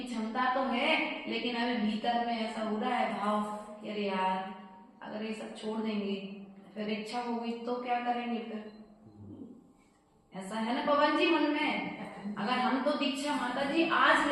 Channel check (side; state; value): both; identical; correlation 1.00